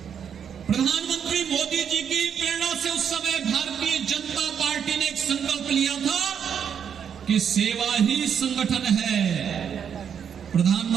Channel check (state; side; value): quieter; left; 7.9 dB